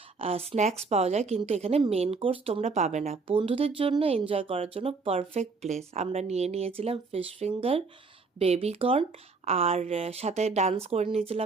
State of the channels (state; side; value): quieter; left; 4.3 dB